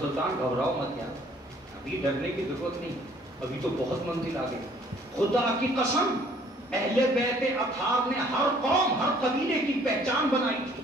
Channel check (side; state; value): both; normal; correlation 0.58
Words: گھبراؤ مت یار، ابھی ڈرنے کی ضرورت نہیں، ابھی تو بہت منزل آگے. خدا کی قسم اہل بیت اطہار نے ہر قوم، ہر قبیلے کی پہچان بنائی تھی،